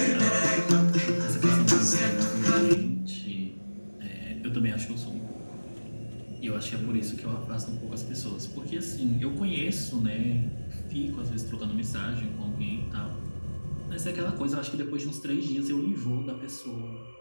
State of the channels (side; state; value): both; inverted; correlation -1.00